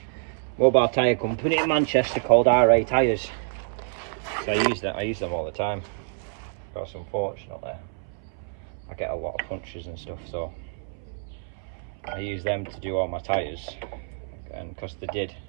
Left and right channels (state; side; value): silent; left; 60 dB below the other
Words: tyre company in Manchester called RA Tyres. So I use them all the time, because unfortunately I get a lot of punctures and stuff, so I use them to do all my tyres, and because they did